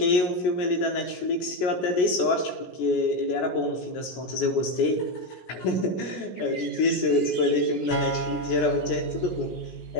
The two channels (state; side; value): late; right; 17 ms